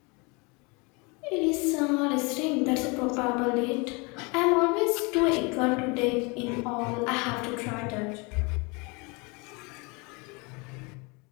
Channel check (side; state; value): right; quieter; 29.0 dB